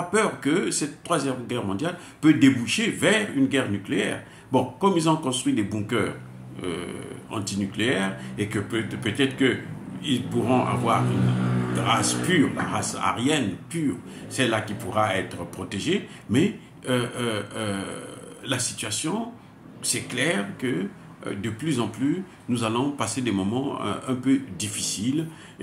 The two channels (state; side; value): identical; both; correlation 1.00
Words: peur que cette troisième guerre mondiale peut déboucher vers une guerre nucléaire. Bon, comme ils ont construit des bunkers antinucléaires et que peut-être qu'ils pourront avoir une race pure, la race aryenne pure, celle-là qui pourra être protégée, mais la situation, c'est clair que de plus en plus, nous allons passer des moments un peu difficiles